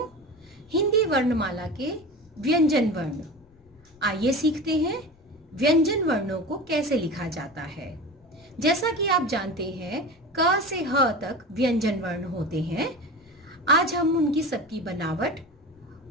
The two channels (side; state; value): left; noise; rumble, 29 dB below the sound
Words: हिंदी वर्णमाला के व्यंजन वर्ण। आइए सीखते हैं व्यंजन वर्णों को कैसे लिखा जाता है। जैसा कि आप जानते हैं, क से ह तक व्यंजन वर्ण होते हैं। आज हम उनकी सबकी बनावट